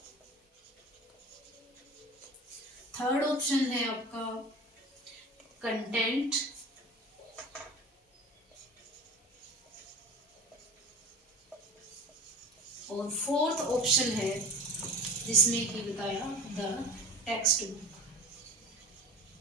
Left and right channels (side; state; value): both; normal; correlation 0.36